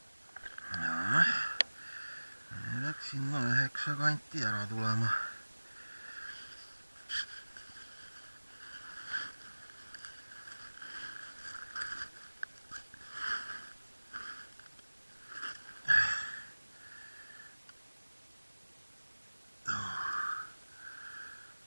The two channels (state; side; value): inverted; both; correlation -1.00